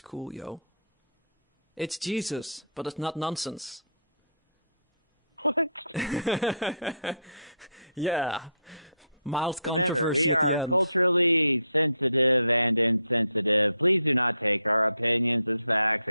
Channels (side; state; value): both; inverted; correlation -0.70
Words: What? Remember, we are culturally sensitive and insensitive. Please do not take our opinions as facts,